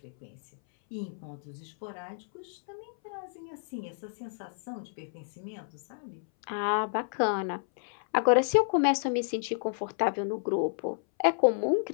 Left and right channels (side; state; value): right; silent; 57 dB below the other